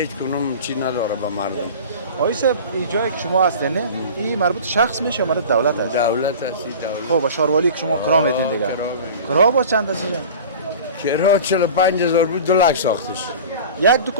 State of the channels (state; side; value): inverted; both; correlation -0.37